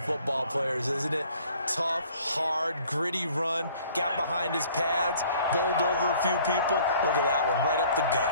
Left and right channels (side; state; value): both; inverted; correlation -0.56